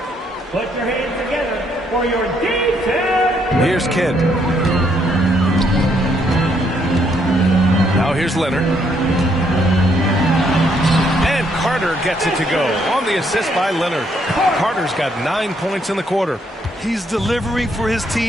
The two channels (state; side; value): normal; both; correlation 0.71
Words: Put your hands together for your defense. Here's Kidd. Now here's Leonard. And Carter gets it to go on the assist by Leonard. Carter's got 9 points in the quarter. He's delivering for his